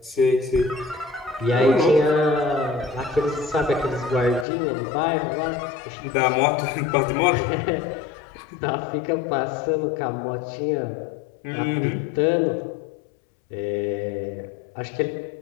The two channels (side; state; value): right; drops out; at 4.5 s